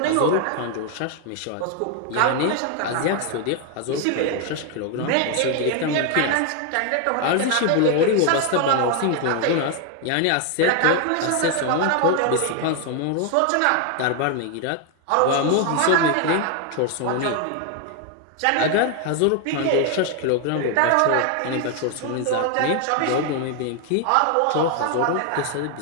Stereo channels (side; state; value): both; different; correlation 0.01